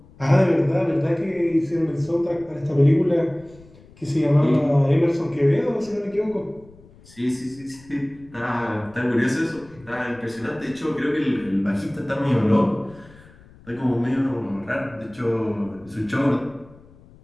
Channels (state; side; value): noise; left; rumble, 24 dB below the sound